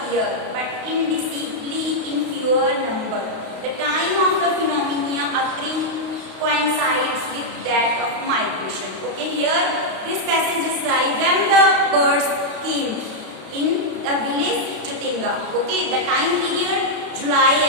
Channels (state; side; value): late; left; 32 ms